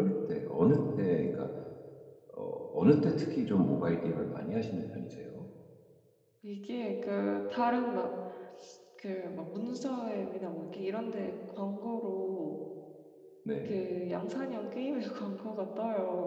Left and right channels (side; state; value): both; identical; correlation 1.00